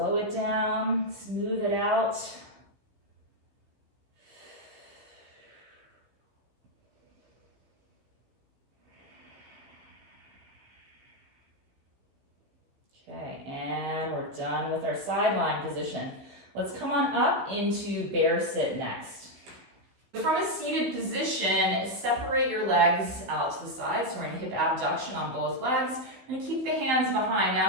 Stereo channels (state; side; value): late; left; 16 ms